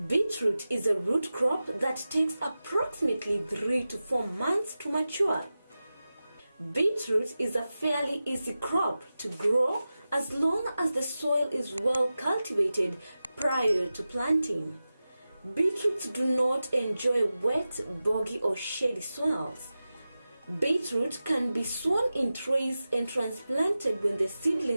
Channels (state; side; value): inverted; both; correlation -0.94